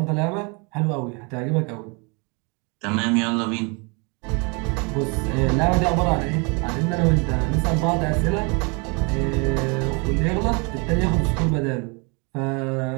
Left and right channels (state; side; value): quieter; left; 31.8 dB